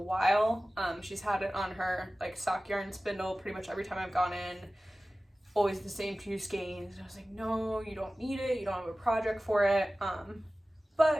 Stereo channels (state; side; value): normal; both; correlation 0.96